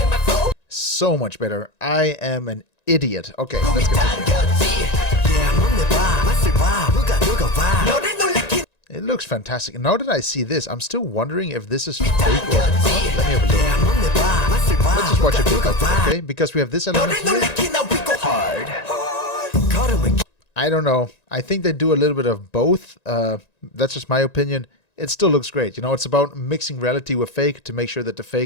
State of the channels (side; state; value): right; late; 1.9 ms